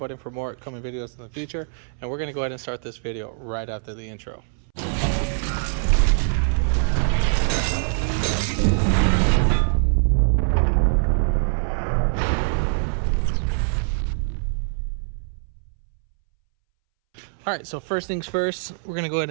for more upcoming videos in the future. And we're going to go ahead and start this video right after the intro. All right, so first things first, we're gonna go ahead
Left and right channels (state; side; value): silent; left; 63 dB below the other